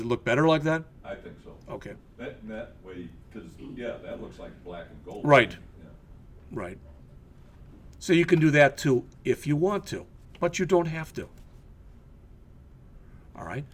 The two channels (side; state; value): both; identical; correlation 1.00